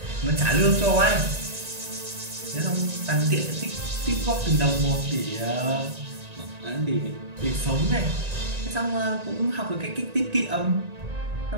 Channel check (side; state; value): left; late; 1.9 ms